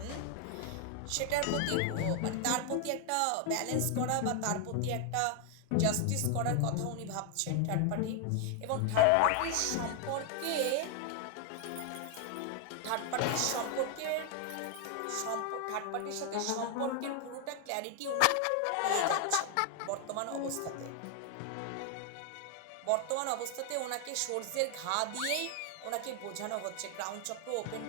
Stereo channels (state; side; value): different; both; correlation 0.00